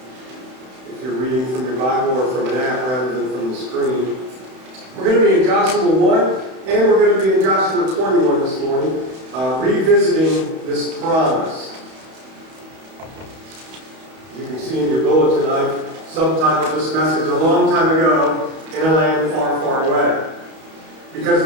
If you're reading from your Bible or from an app rather than from the screen. We're going to be in Joshua 1 and we're going to be in Joshua 21 this morning, revisiting this promise. You can see in your bulletin, I've subtitled this message a long time ago, in a land far, far away. Because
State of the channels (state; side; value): late; left; 31 ms